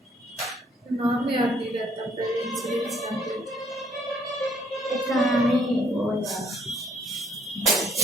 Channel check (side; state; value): both; normal; correlation 0.65